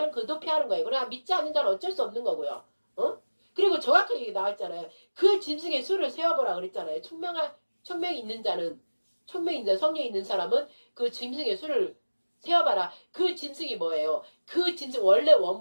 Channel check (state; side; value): inverted; both; correlation -1.00